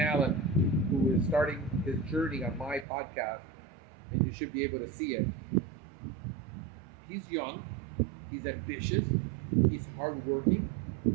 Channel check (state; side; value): drops out; left; at 2.9 s